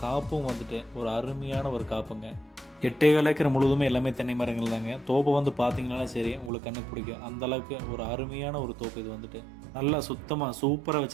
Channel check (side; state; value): left; drops out; at 6.5 s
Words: காப்பும் வந்துட்டு ஒரு அருமையான ஒரு காப்புங்க. 8 ஏக்கர் முழுவதுமே எல்லாமே தென்னை மரங்கள் தாங்க. தோப்பை வந்து பார்த்தீங்கன்னா சரி உங்களுக்கு கண்ணுக்கு பிடிக்கும். அந்தளவுக்கு ஒரு அருமையான ஒரு தோப்பு இது வந்துட்டு. நல்லா சுத்தமாக சூப்பராக